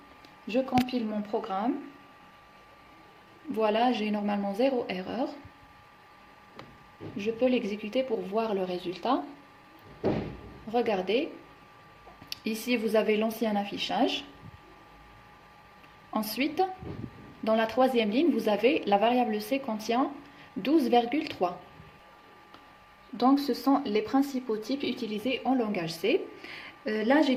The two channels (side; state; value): both; identical; correlation 1.00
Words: Je compile mon programme. Voilà, j'ai normalement 0 erreur. Je peux l'exécuter pour voir le résultat. Regardez. Ici, vous avez l'ancien affichage. Ensuite, dans la troisième ligne, vous avez la variable C contient 12,3. Donc, ce sont les principaux types utilisés en langage C. Là, j'ai